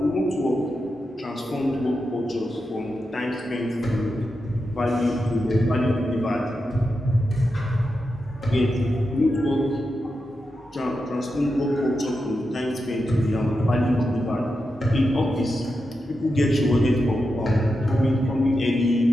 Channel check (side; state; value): both; normal; correlation 0.88